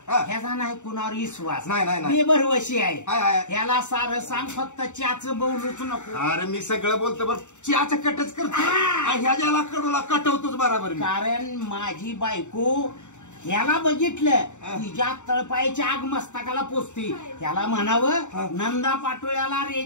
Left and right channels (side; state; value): right; late; 0.84 ms